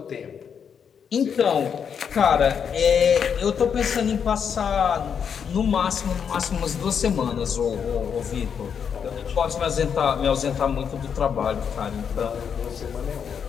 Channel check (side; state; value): right; quieter; 7.3 dB